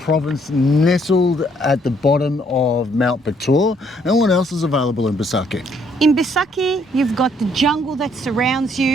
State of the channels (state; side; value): normal; both; correlation 0.67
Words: nestled at the bottom of Mount Batur. And what else is available in Besakih? In Besakih, you've got the jungle that surrounds